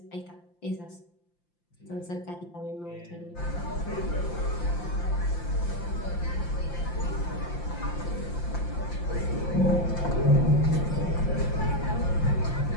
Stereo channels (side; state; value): right; late; 5.8 ms